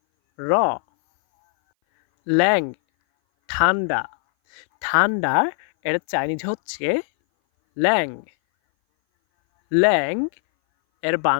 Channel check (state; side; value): silent; right; 60 dB below the other